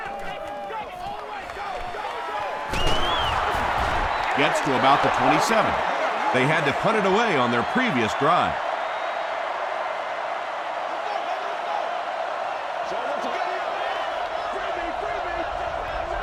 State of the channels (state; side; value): identical; both; correlation 1.00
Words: Gets to about the 27. They had to punt it away on their previous drive.